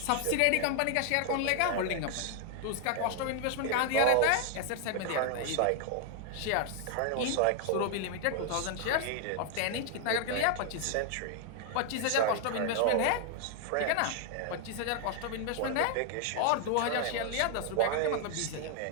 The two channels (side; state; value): both; different; correlation 0.00